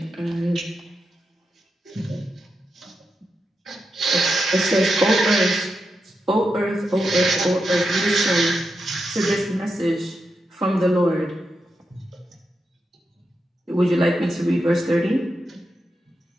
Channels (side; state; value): both; normal; correlation 0.87